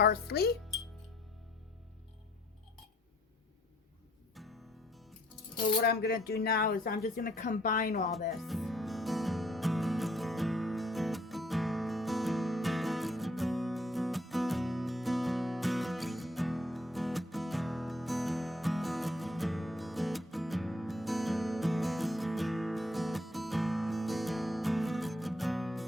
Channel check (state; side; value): normal; both; correlation 0.64